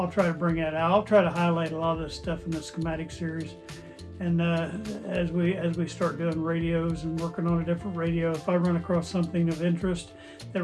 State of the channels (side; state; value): both; identical; correlation 1.00